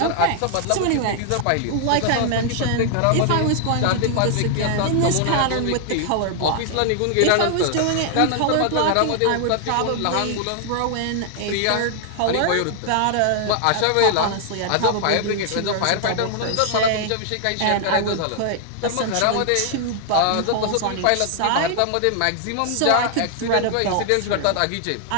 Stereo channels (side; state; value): both; different; correlation 0.00